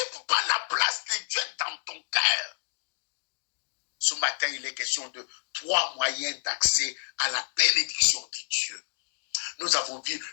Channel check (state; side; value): silent; right; digital silence